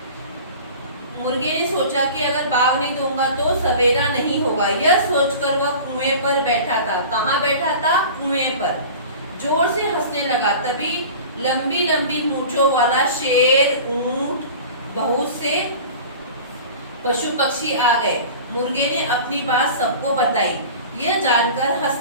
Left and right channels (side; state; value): both; inverted; correlation -0.38